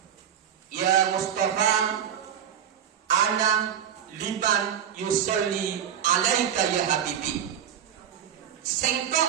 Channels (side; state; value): left; quieter; 9.1 dB